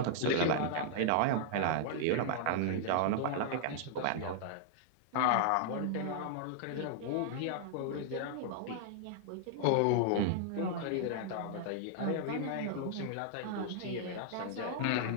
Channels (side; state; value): both; different; correlation -0.01